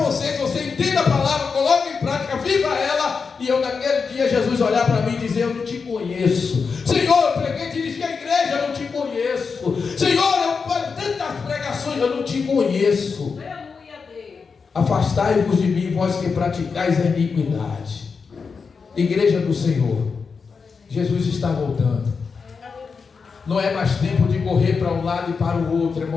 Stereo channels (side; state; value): right; quieter; 5.3 dB